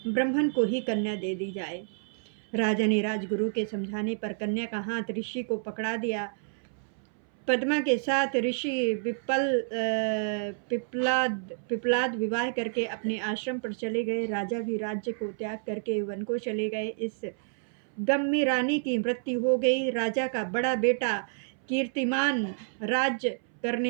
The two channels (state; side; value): silent; left; 58 dB below the other